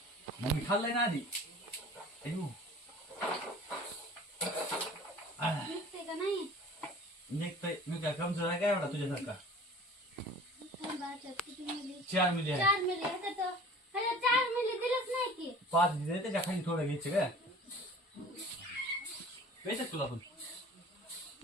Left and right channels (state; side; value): normal; both; correlation 0.45